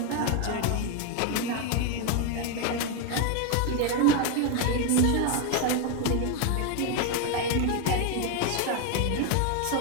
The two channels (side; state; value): both; different; correlation 0.01